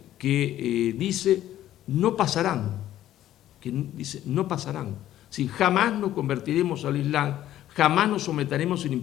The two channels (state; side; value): quieter; right; 12.8 dB